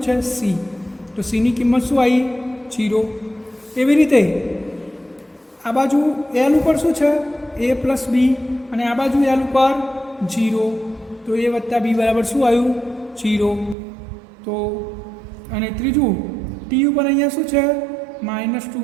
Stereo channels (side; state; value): left; drops out; at 13.8 s